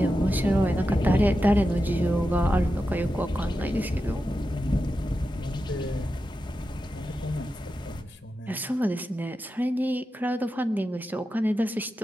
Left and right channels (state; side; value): normal; both; correlation 0.90